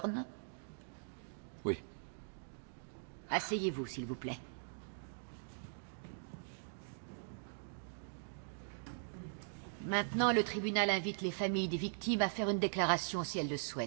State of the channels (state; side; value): silent; left; digital silence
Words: Oui. Asseyez-vous, s'il vous plaît. Maintenant, le tribunal invite les familles des victimes à faire une déclaration si elles le